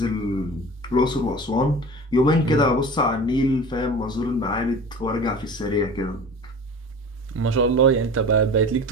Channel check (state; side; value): normal; both; correlation 0.37